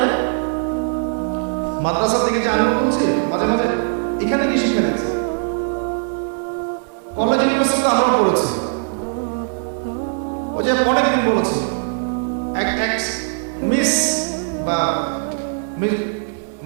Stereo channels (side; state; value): left; silent; digital silence